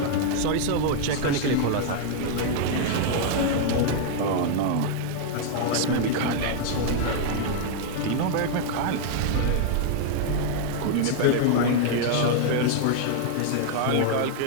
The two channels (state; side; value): different; both; correlation 0.00